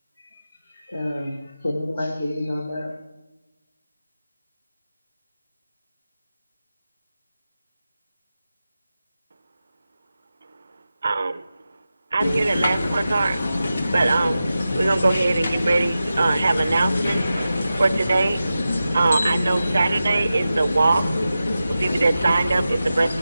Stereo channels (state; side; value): inverted; both; correlation -0.93